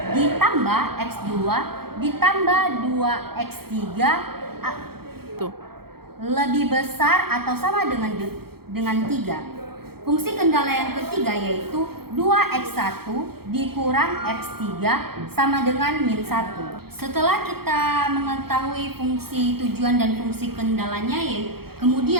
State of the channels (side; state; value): left; late; 0.95 ms